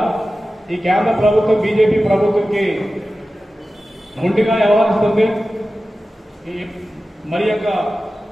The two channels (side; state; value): both; normal; correlation 0.94